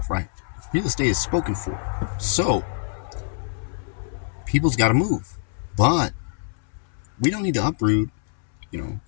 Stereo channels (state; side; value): silent; right; 62 dB below the other